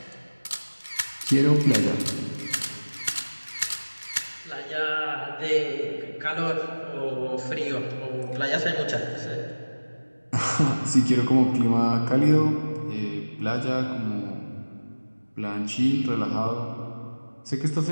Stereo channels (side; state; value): both; inverted; correlation -1.00